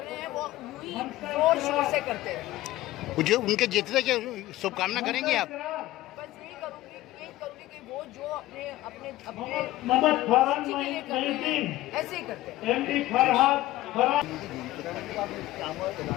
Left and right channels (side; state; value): right; quieter; 16.5 dB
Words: हैं वो यूं ही जोर शोर से करते हैं। जो उनके जीतने की शुभकामना करेंगे आप? बस यही करूँगी कि वो जो अपने अपने अपने के लिए कर रहे हैं ऐसे ही करते हैं। আমার